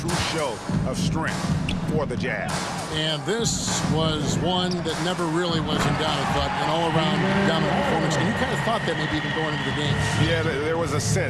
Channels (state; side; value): identical; both; correlation 1.00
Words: show of strength for the Jazz. And this was one that never really was in doubt, but an all-around dominant performance. And you kind of thought that maybe even going into the game. Yeah, there was a